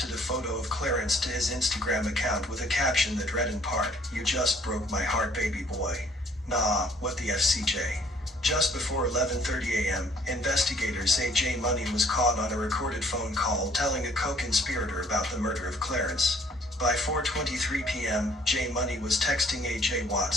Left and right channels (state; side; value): normal; both; correlation 0.59